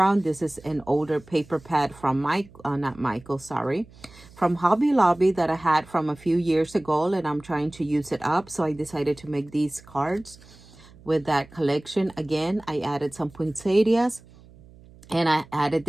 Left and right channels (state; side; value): noise; right; hum, 23 dB below the sound